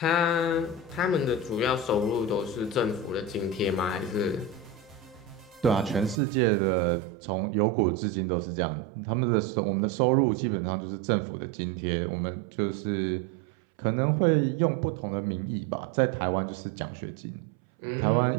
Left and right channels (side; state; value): left; drops out; at 6.2 s